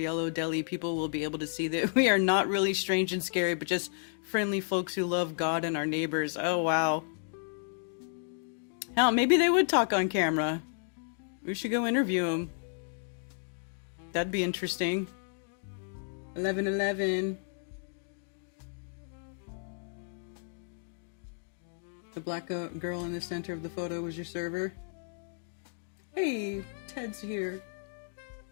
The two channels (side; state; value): right; silent; digital silence